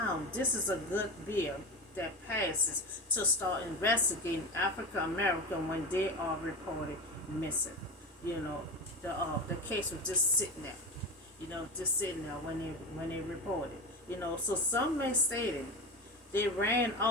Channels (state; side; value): normal; both; correlation 0.24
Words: this is a good bill that passes to start investigating African American when they are reported missing. The case was just sitting there. Just sitting there when they reported. So some may say that they ran